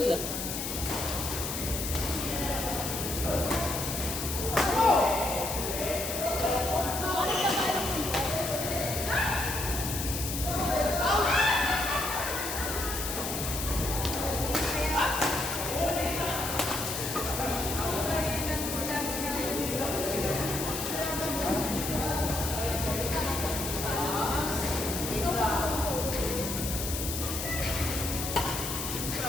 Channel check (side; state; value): left; noise; hiss, 4 dB below the sound